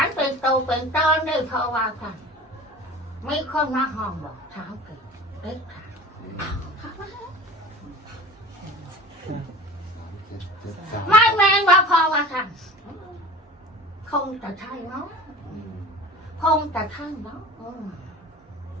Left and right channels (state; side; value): normal; both; correlation 0.38